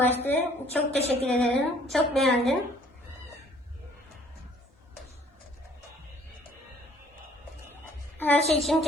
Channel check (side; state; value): both; normal; correlation 0.59